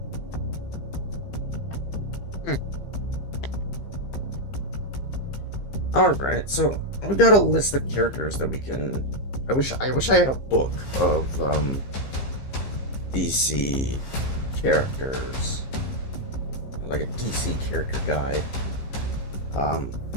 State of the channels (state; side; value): late; right; 15 ms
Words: Hmm. All right, so we got a list of characters that we can. I wish I had a book of DC characters, like a DC character guide. Um,